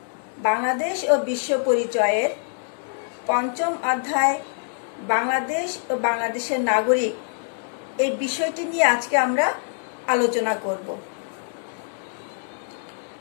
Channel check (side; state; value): right; silent; digital silence